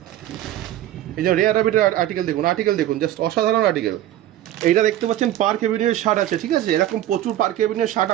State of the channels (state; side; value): quieter; left; 13.1 dB